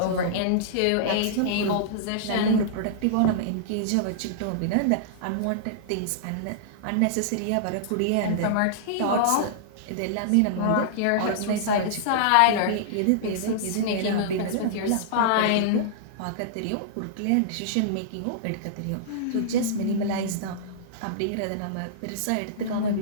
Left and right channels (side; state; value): both; different; correlation -0.02